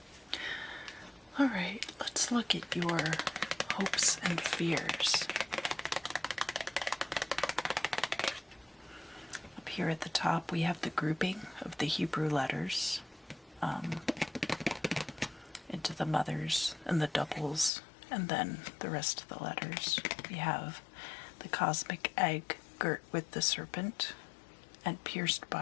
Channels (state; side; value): drops out; right; at 17.7 s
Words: All right, let's look at your hopes and fears. Up here at the top, we have the grouping of the Hebrew letters into the mothers and the doubles, and then the rest of the letters. We have the cosmic egg girt with the serpent and pierced